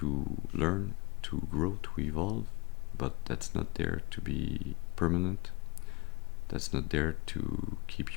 learn, to grow, to evolve, but that's not there to be permanent. That's not there to keep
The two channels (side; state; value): right; quieter; 24.9 dB